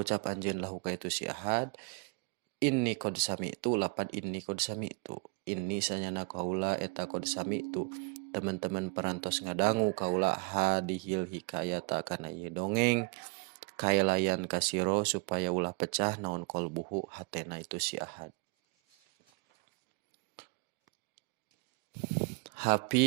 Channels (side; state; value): left; quieter; 28.2 dB